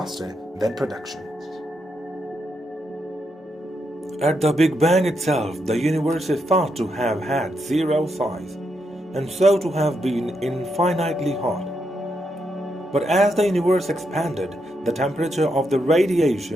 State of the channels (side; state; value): both; normal; correlation 0.81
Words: than production. At the Big Bang itself, the universe is thought to have had zero size, and so to have been infinitely hot. But as the universe expanded, the temperature of the